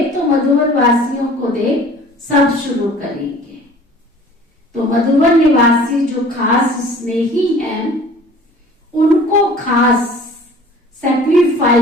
तो मधुबन वासियों को देख सब शुरू करेंगे। तो मधुबन निवासी जो खास स्नेही हैं, उनको खास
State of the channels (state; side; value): normal; both; correlation 0.48